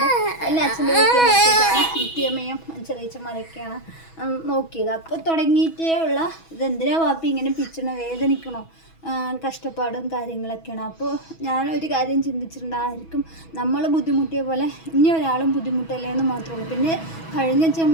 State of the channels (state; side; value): late; right; 6.2 ms